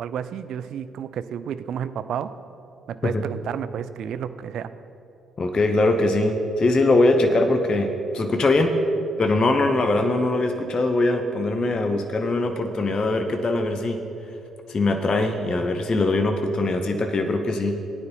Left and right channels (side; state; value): both; normal; correlation 0.81